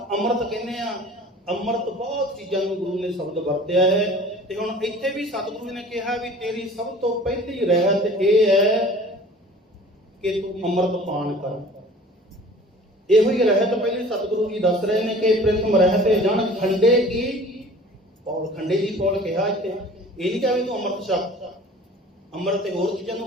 ਅੰਮ੍ਰਿਤ ਕਹਿੰਦੇ ਆ। ਅੰਮ੍ਰਿਤ ਬਹੁਤ ਚੀਜ਼ਾਂ ਨੂੰ ਗੁਰੂ ਨੇ ਸ਼ਬਦ ਵਰਤਿਆ ਹੈ। ਤੇ ਹੁਣ ਇੱਥੇ ਵੀ ਸਤਿਗੁਰੂ ਨੇ ਕਿਹਾ ਵੀ ਤੇਰੀ ਸਭ ਤੋਂ ਪਹਿਲੀ ਰਹਿਤ ਇਹ ਹੈ ਕਿ ਤੂੰ ਅੰਮ੍ਰਿਤ ਪਾਨ ਕਰ। ਇਹੋ ਹੀ ਰਹਿਤ ਪਹਿਲੇ ਸਤਿਗੁਰੂ ਜੀ ਦੱਸ ਰਹੇ ਨੇ ਕਿ ਪ੍ਰਥਮ ਰਹਿਤ ਜਨ ਖੰਡੇ ਕੀ ਪੌਲ। ਖੰਡੇ ਦੀ ਪੌਲ ਕਿਹਾ ਇੱਥੇ। ਇਹ ਨਹੀਂ ਕਿਹਾ ਵੀ ਤੂੰ ਅੰਮ੍ਰਿਤ ਛਕ। ਅੰਮ੍ਰਿਤ ਤੇ ਹੋਰ ਚੀਜ਼ਾਂ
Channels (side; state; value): both; normal; correlation 0.46